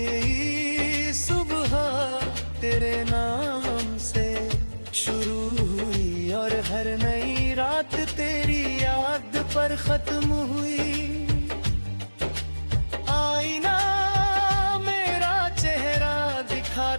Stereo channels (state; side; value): inverted; both; correlation -1.00